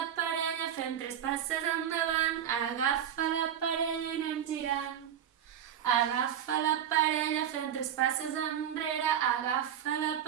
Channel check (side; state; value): left; quieter; 9.7 dB